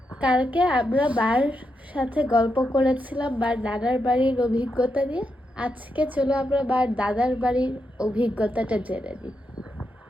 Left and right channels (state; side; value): normal; both; correlation 0.84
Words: কালকে আমরা বার সাথে গল্প করেছিলাম বার দাদার বাড়ির অভিজ্ঞতা নিয়ে। আজকে চলো আমরা বার দাদার বাড়ির অভিজ্ঞতাটা জেনে নিই।